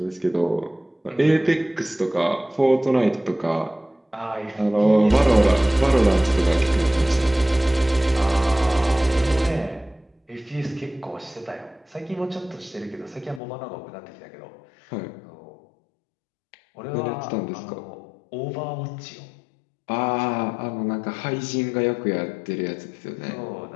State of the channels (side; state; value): right; drops out; at 13.4 s